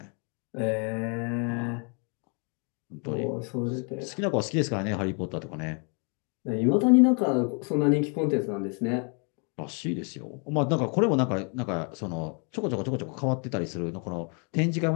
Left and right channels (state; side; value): quieter; right; 38.1 dB